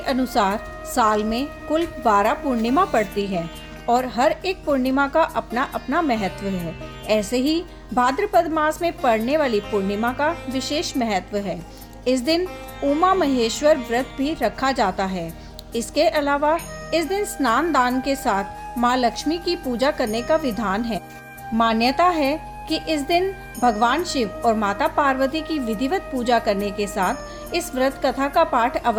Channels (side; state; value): both; identical; correlation 1.00